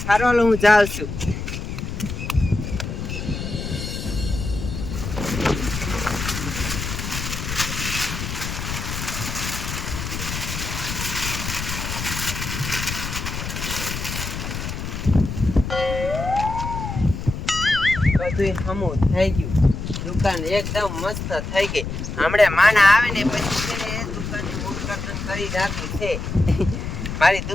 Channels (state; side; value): noise; left; rumble, 5 dB below the sound